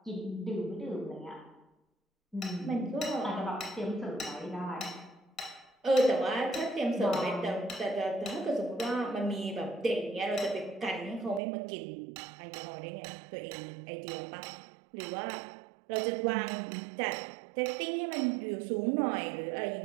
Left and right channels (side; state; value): left; drops out; at 11.4 s